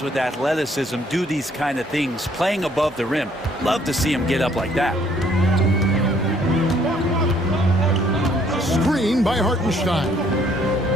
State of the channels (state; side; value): normal; both; correlation 0.64